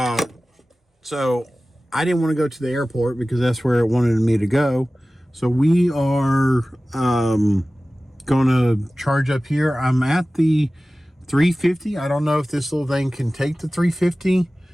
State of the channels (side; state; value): both; normal; correlation 0.97